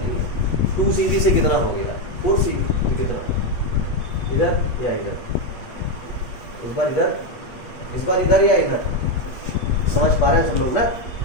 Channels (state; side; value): late; right; 8.3 ms